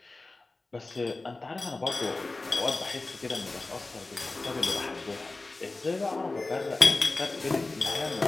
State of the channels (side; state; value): right; quieter; 3.3 dB